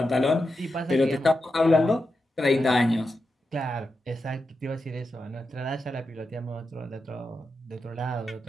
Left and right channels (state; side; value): normal; both; correlation 0.88